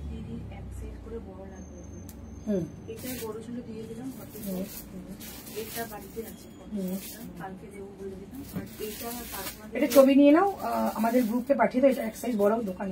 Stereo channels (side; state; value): both; identical; correlation 1.00